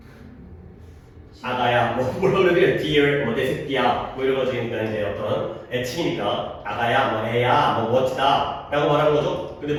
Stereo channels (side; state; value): both; identical; correlation 1.00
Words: 아가야 뭐라고 그래 dear 내 새끼야 뭐 이런 거 지금 이제 어떤 애칭이니까 아가야 애야 멋지다 라고 말하는 거죠. 근데